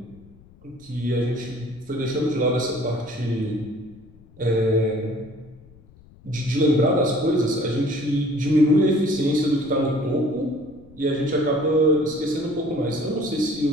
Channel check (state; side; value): noise; left; rumble, 25 dB below the sound